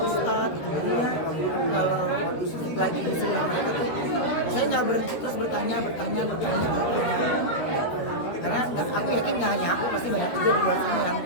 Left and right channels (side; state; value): right; late; 13 ms